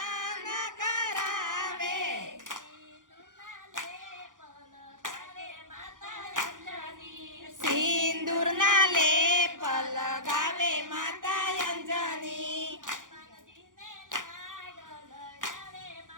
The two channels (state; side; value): late; left; 0.88 ms